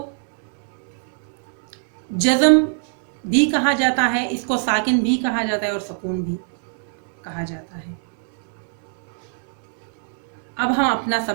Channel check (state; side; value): silent; left; 63 dB below the other